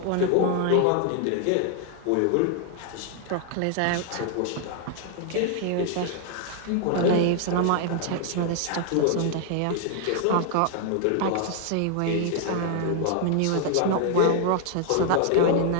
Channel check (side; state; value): both; different; correlation 0.00